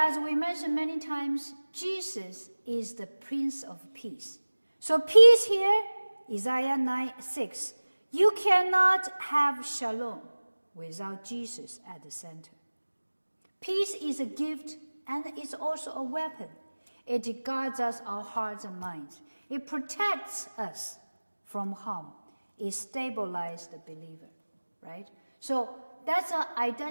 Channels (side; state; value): both; inverted; correlation -1.00